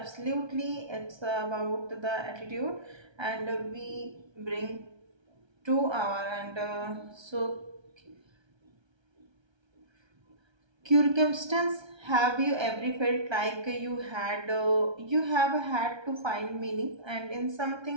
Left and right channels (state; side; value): late; left; 1.3 ms